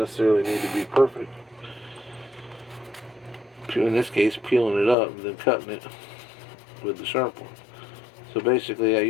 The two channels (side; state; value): right; drops out; at 5.0 s